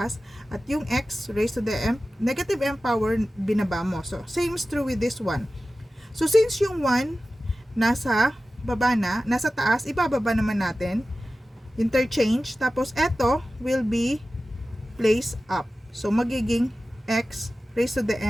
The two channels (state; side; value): normal; both; correlation 0.95